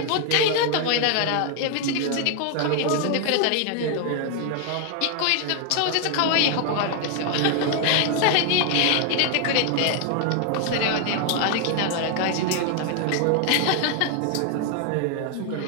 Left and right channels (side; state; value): both; different; correlation 0.00